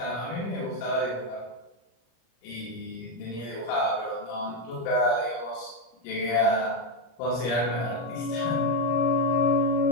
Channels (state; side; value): late; right; 25 ms